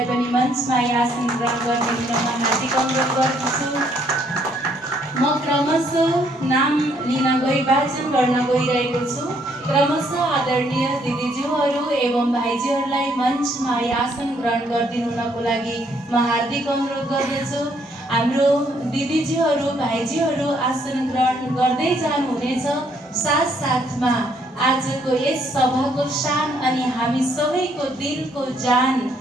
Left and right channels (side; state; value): both; normal; correlation 0.69